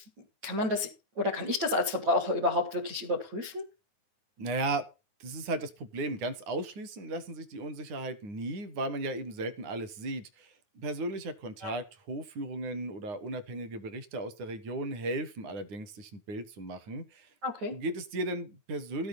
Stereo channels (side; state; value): left; late; 9.5 ms